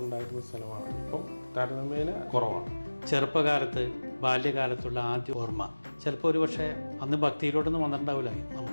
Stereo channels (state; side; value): inverted; both; correlation -1.00